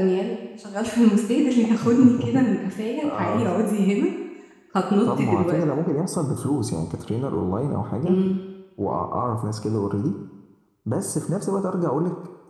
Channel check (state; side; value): identical; both; correlation 1.00